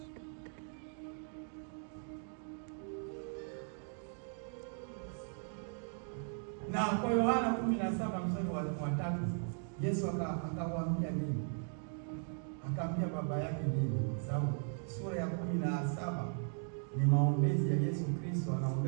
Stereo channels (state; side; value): silent; left; 53 dB below the other